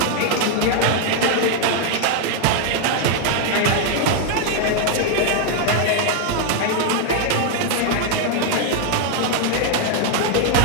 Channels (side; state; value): both; different; correlation 0.00